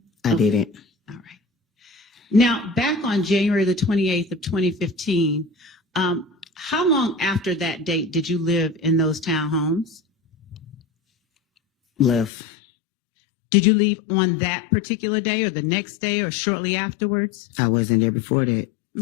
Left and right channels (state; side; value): drops out; right; at 12.3 s